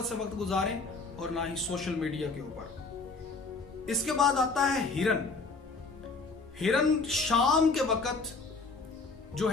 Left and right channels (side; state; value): right; quieter; 4.0 dB